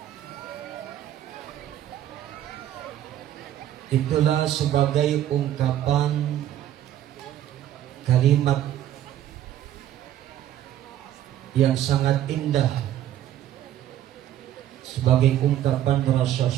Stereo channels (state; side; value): quieter; left; 11.9 dB